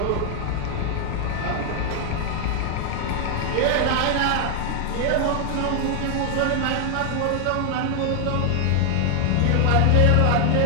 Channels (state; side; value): different; both; correlation 0.00